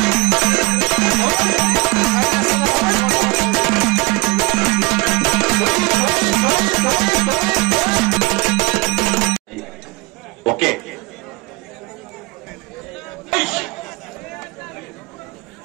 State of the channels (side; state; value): left; quieter; 24.5 dB